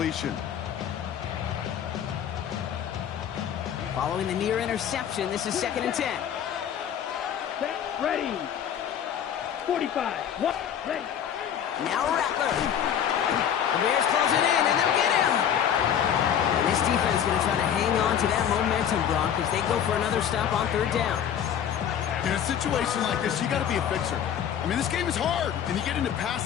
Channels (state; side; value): quieter; right; 9.1 dB